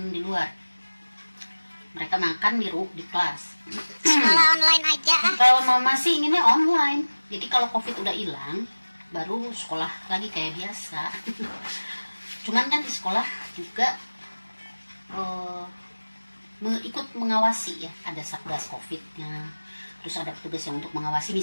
di luar. Mereka makan di kelas. Sekolah online aja. Kalau mau masih inginnya online. Jadi kalau COVID udah hilang, baru sekolah lagi kayak biasa. Cuman kan di sekolah juga ikut mengawasi ya, ada satgas COVID-nya. Terus ada petugas yang untuk mengawasi,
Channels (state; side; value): inverted; both; correlation -1.00